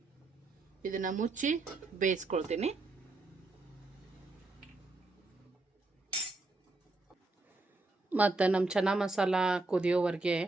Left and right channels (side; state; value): left; quieter; 3.2 dB